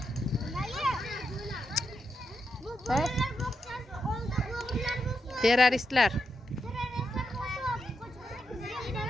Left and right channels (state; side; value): normal; both; correlation 0.85